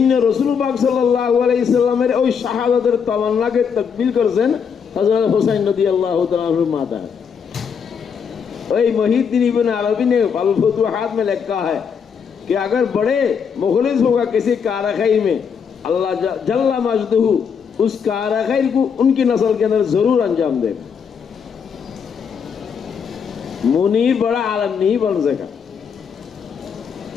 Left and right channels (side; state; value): right; quieter; 6.7 dB